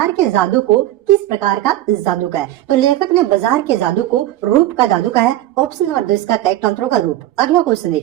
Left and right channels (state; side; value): quieter; left; 14.4 dB